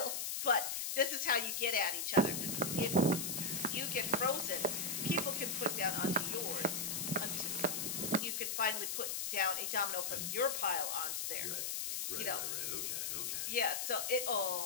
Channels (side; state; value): left; noise; hiss, 1 dB below the sound